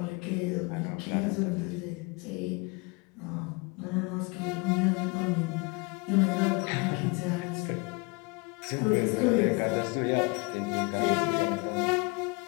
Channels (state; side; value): quieter; right; 28.9 dB